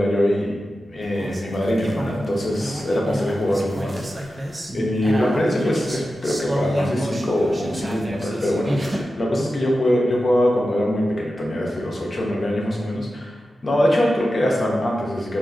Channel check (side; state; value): both; normal; correlation 0.92